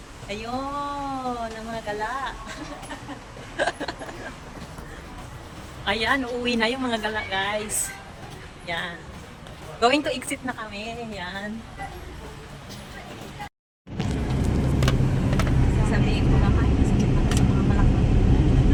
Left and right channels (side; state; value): both; identical; correlation 1.00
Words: Ayun, ang mga gala. Ayan, uuwi na yung mga gala guys. Yan. Going to exit na kami. Yan. Sasabihin ko naman, kasi sa mga